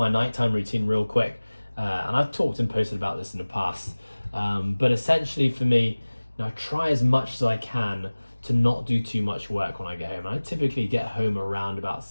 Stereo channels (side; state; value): both; inverted; correlation -1.00